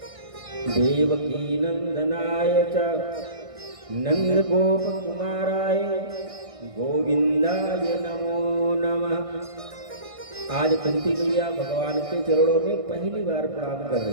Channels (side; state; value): left; late; 1.6 ms